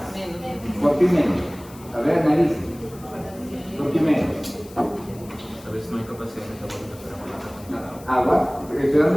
¿Por qué menos? A ver, analice. ¿Por qué menos? A veces no hay capacidad de metabolismo para Agua, estoy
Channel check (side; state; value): left; noise; hiss, 22 dB below the sound